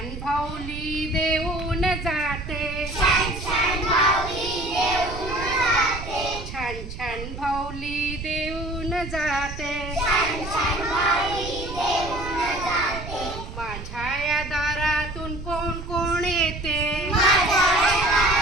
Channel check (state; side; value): noise; right; rumble, 10 dB below the sound